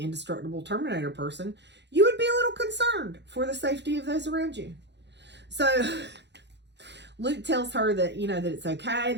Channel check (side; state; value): left; late; 0.51 ms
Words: indestructible Terminator person, you would be a little concerned for the safety of those around you. So, Luke tells her that, you know, that it's okay.